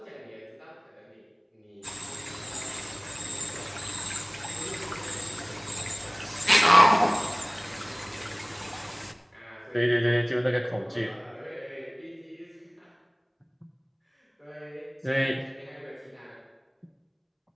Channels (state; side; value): identical; both; correlation 1.00